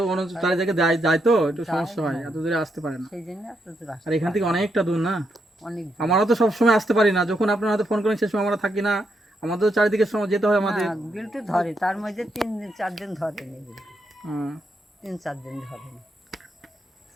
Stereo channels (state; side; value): normal; both; correlation 0.80